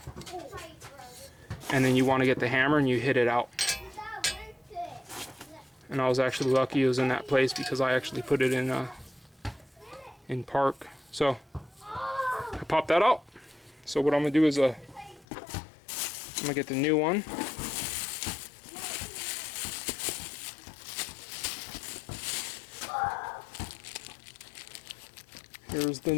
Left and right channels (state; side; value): drops out; right; at 15.2 s